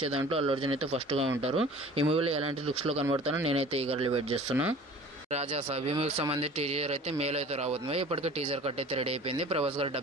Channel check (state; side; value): normal; both; correlation 0.44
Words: దాంట్లో అల్లు అర్జున్ అయితే ఫస్ట్గా ఉంటారు. ఈ మూవీలో ఎలాంటి లుక్స్లో కనబడతానో నేనైతే ఈగర్లీ వెయిట్ చేస్తున్నా. రాజా సాబ్ ఈ మూవీకి సంబంధించి టీజర్ అయితే మేలో అయితే రాబోతుంది. ఇప్పటికే టీజర్ కట్ అయితే రెడీ అయిపోయింది. ప్రభాస్ గారు